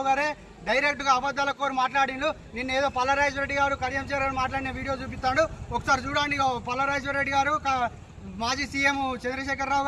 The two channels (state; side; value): identical; both; correlation 1.00